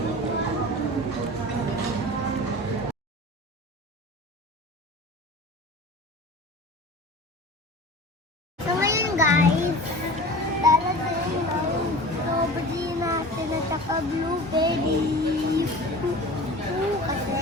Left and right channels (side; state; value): both; normal; correlation 0.37